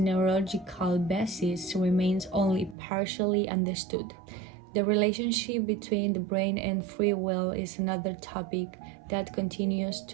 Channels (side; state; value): left; drops out; at 2.8 s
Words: basis remains only partially understood. The relationship between the brain and free will is another topic that continues